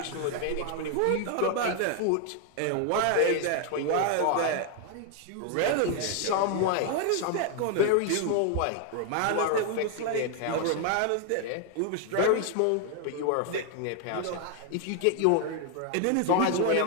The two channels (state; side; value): different; both; correlation 0.00